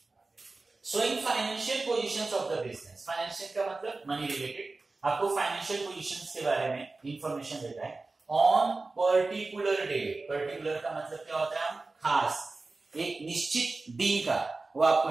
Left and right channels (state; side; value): quieter; left; 3.5 dB